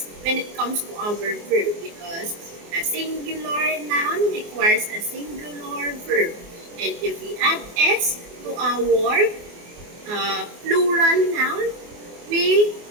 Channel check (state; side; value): late; left; 24 ms